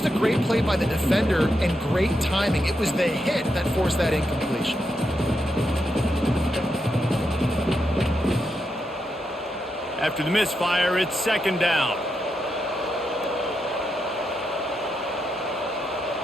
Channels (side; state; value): both; normal; correlation 0.84